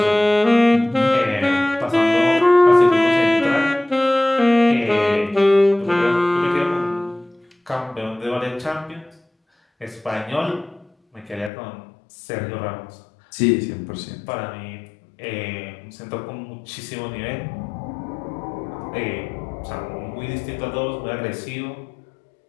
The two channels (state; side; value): drops out; right; at 11.5 s